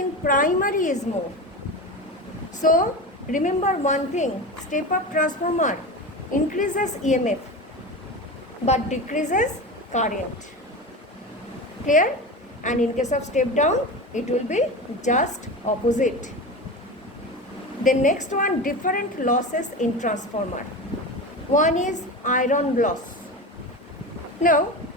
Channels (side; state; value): both; normal; correlation 0.26